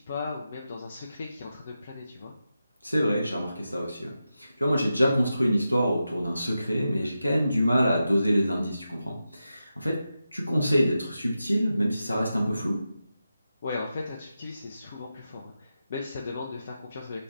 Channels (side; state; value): both; inverted; correlation -0.90